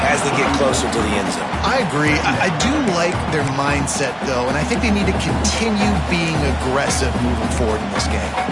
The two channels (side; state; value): both; identical; correlation 1.00